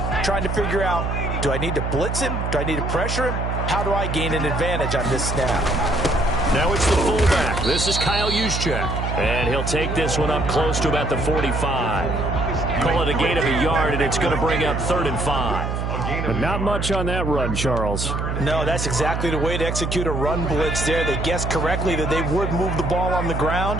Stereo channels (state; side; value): noise; right; hum, 2 dB below the sound